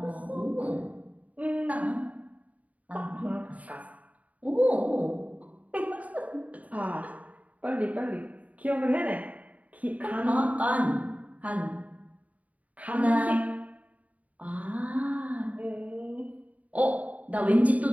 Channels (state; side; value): late; left; 0.070 ms